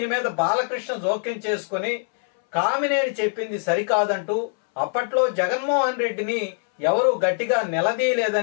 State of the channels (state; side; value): silent; right; 63 dB below the other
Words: మీద బాలకృష్ణ జోక్యం చేసుకుని కామినేని చెప్పింది సరికాదంటూ అప్పట్లో జగన్మోహన్ రెడ్డిని ఎవరు గట్టిగా